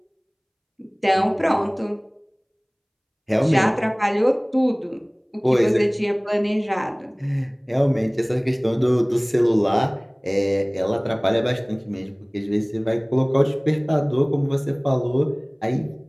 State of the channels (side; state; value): both; identical; correlation 1.00